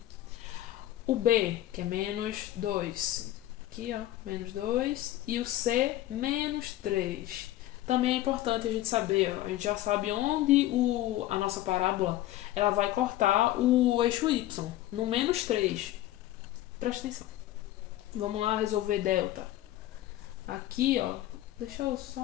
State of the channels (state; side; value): quieter; right; 14.6 dB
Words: O B, que é menos 2. Aqui, ó, menos 2. E o C, menos 3. Também é importante a gente saber, ó, a gente já sabe onde a nossa parábola ela vai cortar o eixo Y, no menos 3. Presta atenção. Vamos lá resolver delta. Aqui, ó, deixa eu